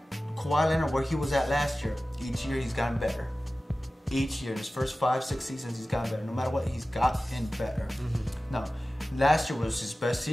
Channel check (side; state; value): both; normal; correlation 0.96